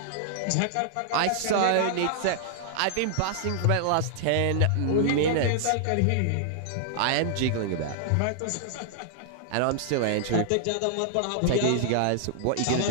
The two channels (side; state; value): both; different; correlation -0.01